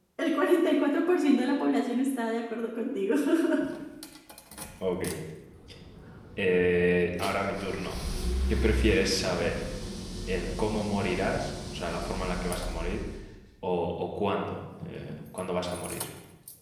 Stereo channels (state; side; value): identical; both; correlation 1.00